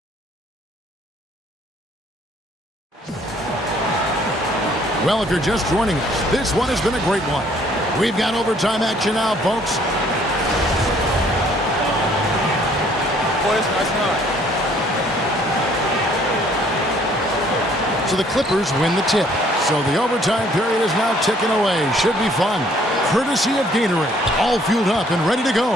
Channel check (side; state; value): both; normal; correlation 0.61